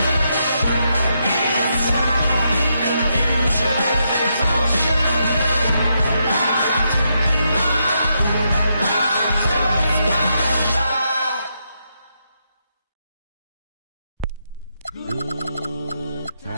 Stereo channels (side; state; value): both; inverted; correlation -0.81